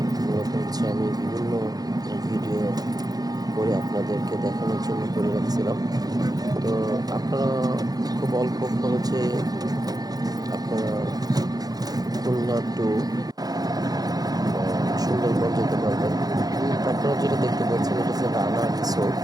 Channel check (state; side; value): late; left; 0.19 ms